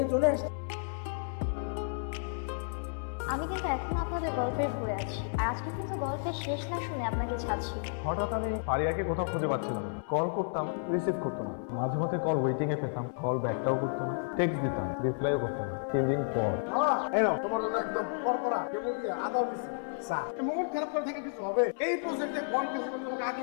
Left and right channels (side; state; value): right; silent; 57 dB below the other